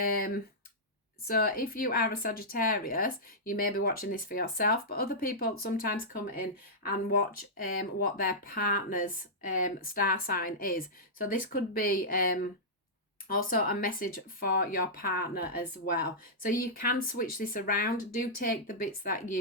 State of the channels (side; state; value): both; normal; correlation -0.12